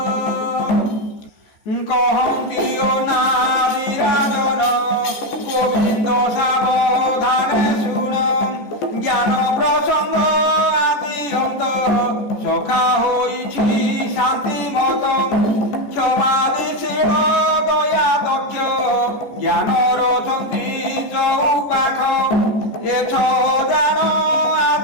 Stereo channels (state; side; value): late; right; 14 ms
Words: কহন্তি ও না বিরাজন গোবিন্দ গোবিন্দ সাবধানে শুন, জ্ঞান প্রসঙ্গ আদি অন্ত, সখা হইছি শান্তি মত, ক্ষমাদিশীল দয়া দক্ষ, জ্ঞানর অছন্তি চৌপাখ, এছ দান